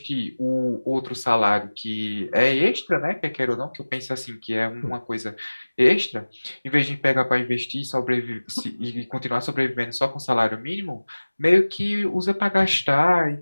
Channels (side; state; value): both; inverted; correlation -1.00